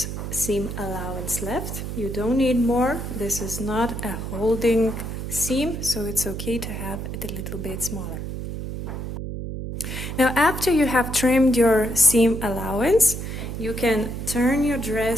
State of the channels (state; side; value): noise; right; hum, 6 dB below the sound